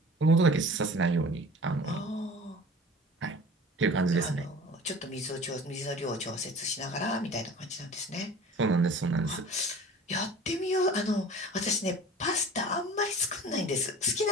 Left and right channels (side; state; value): both; normal; correlation 0.42